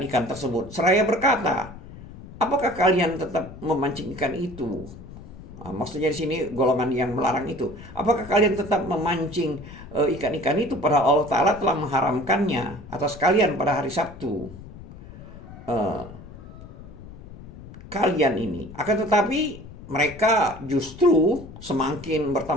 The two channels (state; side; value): noise; left; rumble, 16 dB below the sound